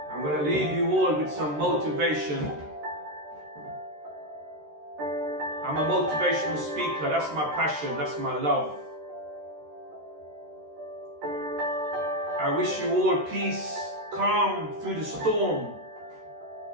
I'm going to leave you all with some motivation. I'm a motivational speaker. That's my passion. That's my love. I wish you all peace, calm through the storm.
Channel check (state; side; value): late; left; 13 ms